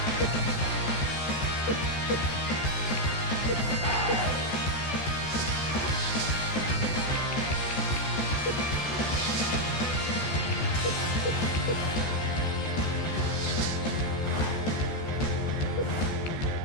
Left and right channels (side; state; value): right; late; 14 ms